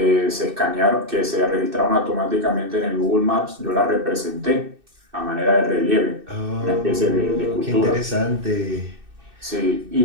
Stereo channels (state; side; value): late; left; 2.6 ms